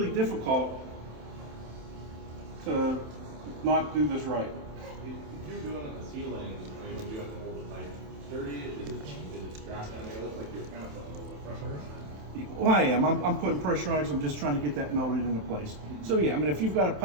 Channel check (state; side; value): late; left; 27 ms